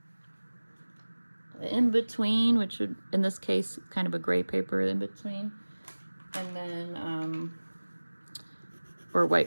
the in between, which would, in this case, kind of a gray paper in between, and then, or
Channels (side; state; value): both; inverted; correlation -1.00